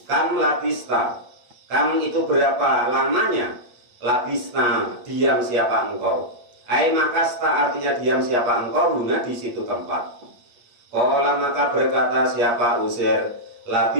kam labista, kam itu berapa lamanya? Labista, diam siapa engkau? Ai makasta artinya diam siapa engkau guna di situ tempat. Qala maka berkata siapa Uzair,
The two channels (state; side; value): late; left; 8.7 ms